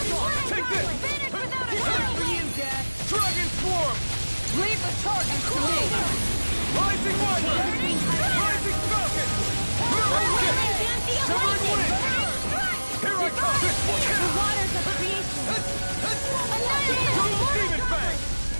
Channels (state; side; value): inverted; both; correlation -1.00